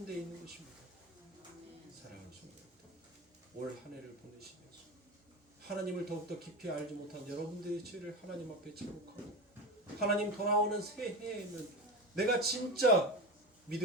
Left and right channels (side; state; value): both; normal; correlation 0.23